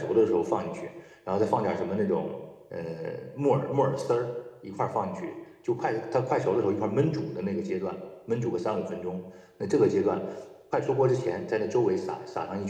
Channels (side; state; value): both; identical; correlation 1.00